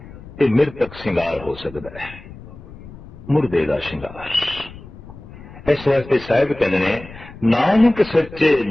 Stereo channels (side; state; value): left; noise; rumble, 17 dB below the sound